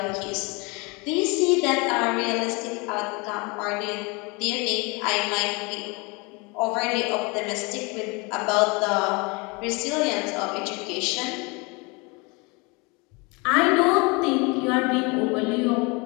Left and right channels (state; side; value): quieter; right; 28.3 dB